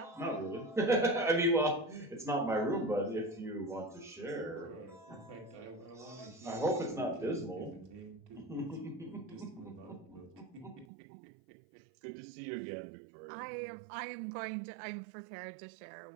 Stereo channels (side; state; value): left; drops out; at 10.9 s